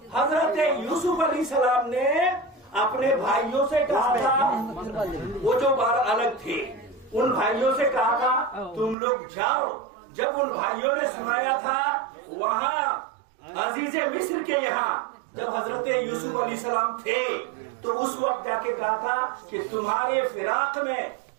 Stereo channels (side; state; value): left; drops out; at 9.0 s